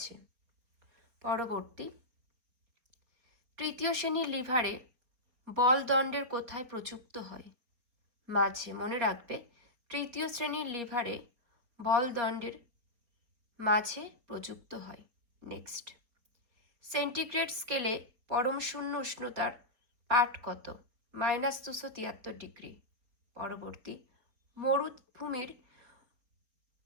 পরবর্তী, তৃতীয় শ্রেণীর লিভারে বলদণ্ডের কোথায় প্রযুক্ত হয়? মাঝে। মনে রাখবে, তৃতীয় শ্রেণীর লিভারে বলদণ্ডের মাঝে প্রযুক্ত হয়। নেক্সট, সেন্টিগ্রেড স্কেলে পরম শূন্য উষ্ণতার পাঠ কত? -273 ডিগ্রি। পরবর্তী, মরুভূমির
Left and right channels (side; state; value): left; late; 4.6 ms